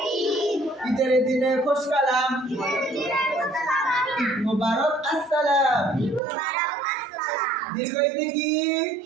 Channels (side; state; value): left; drops out; at 6.2 s